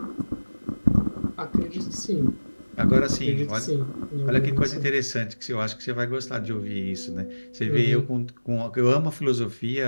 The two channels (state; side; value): inverted; both; correlation -1.00